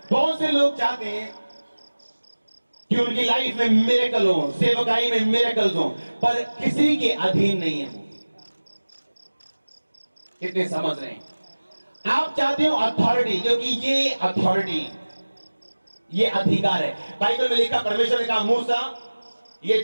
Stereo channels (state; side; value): inverted; both; correlation -1.00